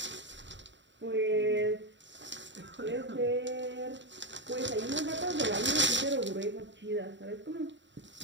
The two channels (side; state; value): left; late; 0.53 ms